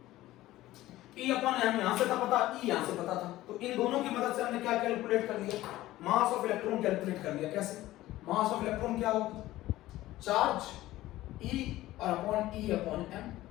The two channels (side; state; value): right; quieter; 16.1 dB